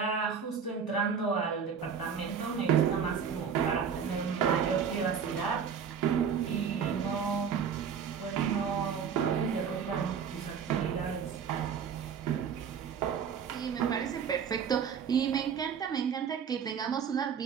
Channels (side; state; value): left; quieter; 7.1 dB